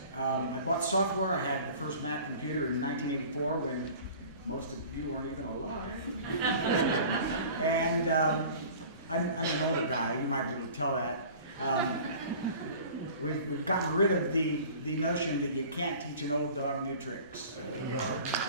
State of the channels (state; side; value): inverted; both; correlation -0.44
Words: I bought software. I had the first Mac computer in 1984 when most of you weren't even alive. And I'm an older guy. You might be able to tell that. We've gotten rid of the notion that you can't teach an old dog new tricks.